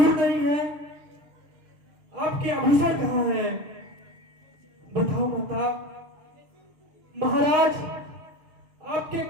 नहीं है, आपके आभूषण कहाँ हैं? बताओ माता। महाराज आपके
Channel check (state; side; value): late; left; 6.4 ms